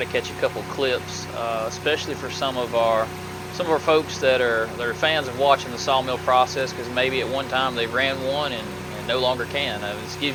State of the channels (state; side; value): identical; both; correlation 1.00